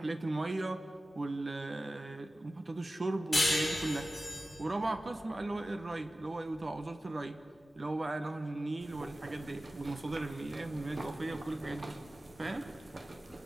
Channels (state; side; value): normal; both; correlation 0.96